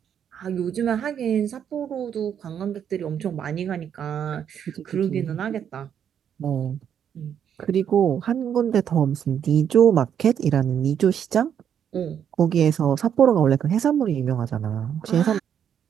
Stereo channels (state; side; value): quieter; left; 8.7 dB